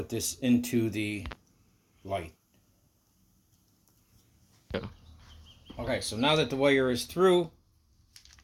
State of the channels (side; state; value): both; identical; correlation 1.00